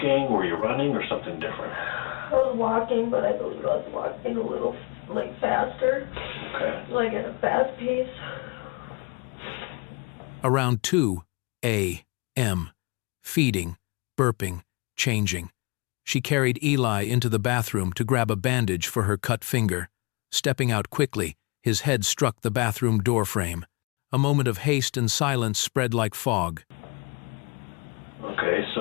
were you running, or something different? I was walking, but I believe I was walking a little, faster, Okay. at a fast pace. Around 2 a.m., feeding, burping, changing. She carried Eli into the bathroom to grab a bandage for her cut finger. Stepping out quickly, his head struck the bathroom door frame. A moment of haste and silence spread like fog. Okay,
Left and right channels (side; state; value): right; quieter; 30.1 dB